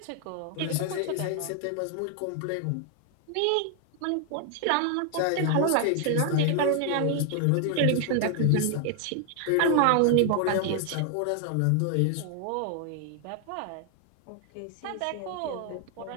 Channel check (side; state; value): both; different; correlation 0.00